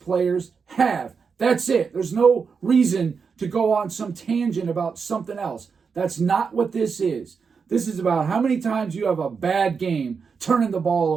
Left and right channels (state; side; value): quieter; left; 5.6 dB